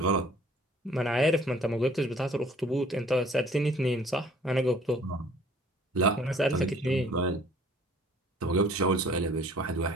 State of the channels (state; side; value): normal; both; correlation 0.54